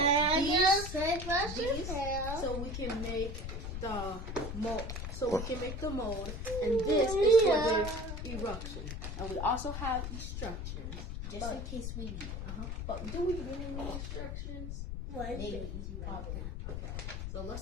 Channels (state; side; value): noise; left; rumble, 5 dB below the sound